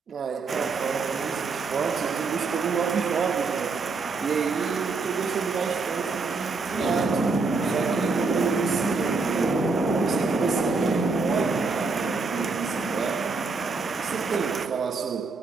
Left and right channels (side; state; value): left; quieter; 4.1 dB